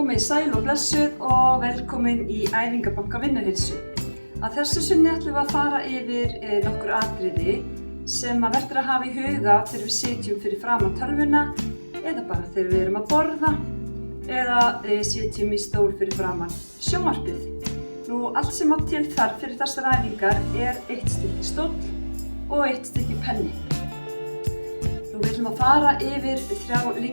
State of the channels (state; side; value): inverted; both; correlation -1.00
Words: sæl og blessuð og velkomin í Æfingabanka Vinnuheilsu. Að þessu sinni ætlum við að fara yfir nokkur atriði sem verður að hafa í huga þegar við sitjum fyrir framan tölvuna eða bara þegar við erum að borða eða sitjum í stól fyrir framan sjónvarpið. Allt sem á til þarf fyrir þessar æfingar eitt stykki stóll og eitt stykki penni. Við ætlum að fara yfir 3